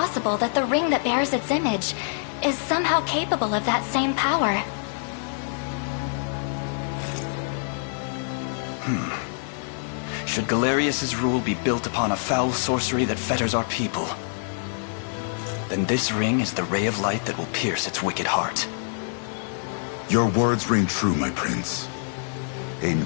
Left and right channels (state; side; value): silent; right; 57 dB below the other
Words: that the ring that bears its image is somehow capable of that same power. Should Galerius's rule be built upon a foul sorcery that fetters our people, then this ring is the ray of light that will pierce its wicked heart. Your words ring true, my prince.